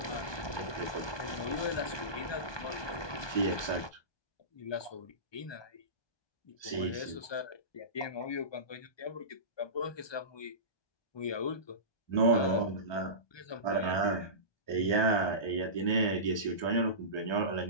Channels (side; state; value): right; late; 1.2 ms